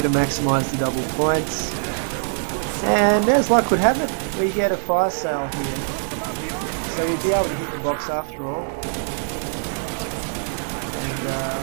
to maximise the double points. And as luck would have it, we get a fire sale here. So we'll be able to hit the box after all. And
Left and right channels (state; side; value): silent; left; digital silence